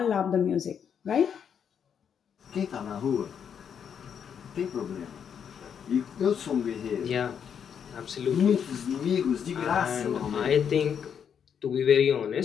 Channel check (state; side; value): quieter; right; 7.8 dB